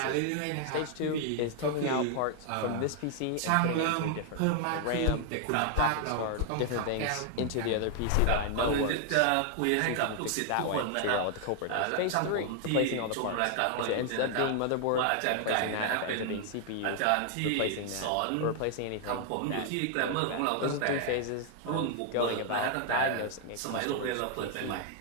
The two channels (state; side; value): different; both; correlation 0.00